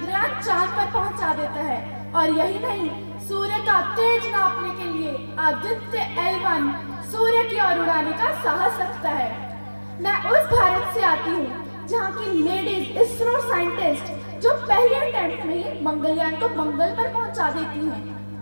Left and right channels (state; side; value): inverted; both; correlation -1.00